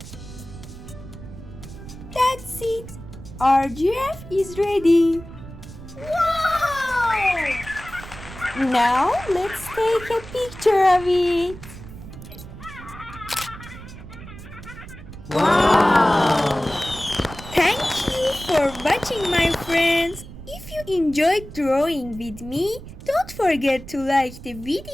That's it! Our giraffe is ready! Wow! Now let's take a picture of it! Wow! Thank you for watching, my friends! If you enjoyed drawing with me, don't forget to like the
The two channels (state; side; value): noise; right; rumble, 14 dB below the sound